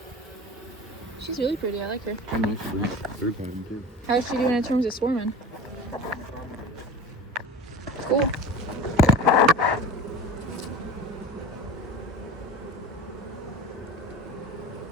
She's really pretty, I like her. And nice fruit pattern too. How's she doing in terms of swarming? Cool.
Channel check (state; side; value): normal; both; correlation 0.34